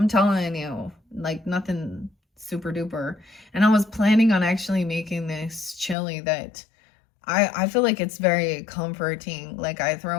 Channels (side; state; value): right; drops out; at 6.0 s